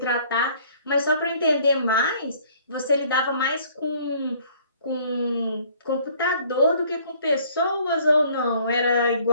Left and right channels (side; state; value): both; inverted; correlation -0.58